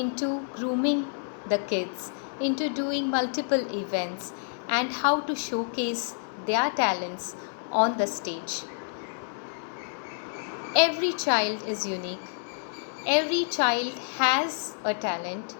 grooming the kids into doing multiple events and how to showcase their talents on the stage. Every child is unique. Every child has a talent,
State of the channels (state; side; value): silent; right; 59 dB below the other